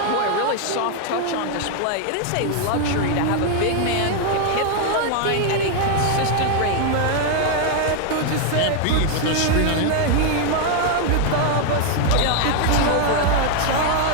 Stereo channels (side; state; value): both; different; correlation 0.00